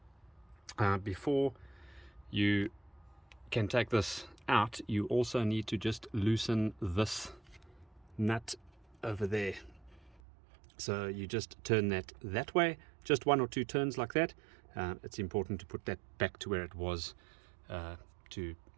Before you can take this out, you also need to just loosen this nut over there. So you just turn that way, just one or two turns like that. It's important to put that back to where it was, to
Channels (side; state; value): left; drops out; at 10.2 s